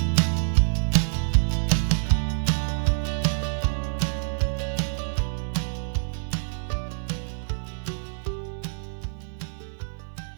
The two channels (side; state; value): left; silent; digital silence